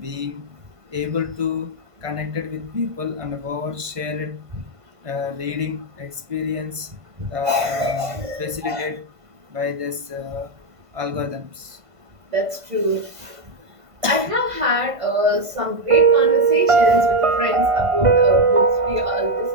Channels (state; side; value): late; left; 1.5 ms